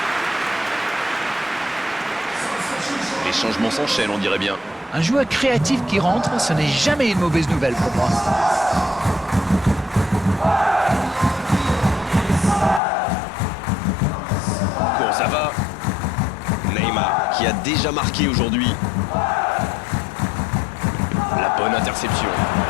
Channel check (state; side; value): drops out; right; at 12.8 s